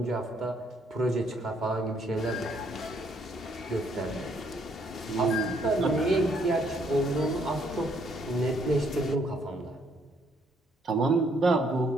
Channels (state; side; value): normal; both; correlation 0.69